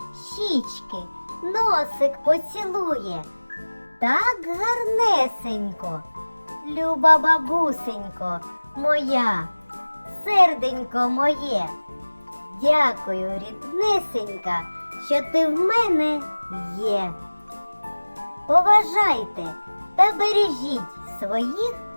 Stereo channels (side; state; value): both; inverted; correlation -1.00